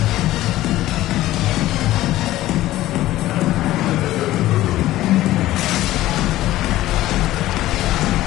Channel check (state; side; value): quieter; right; 15.5 dB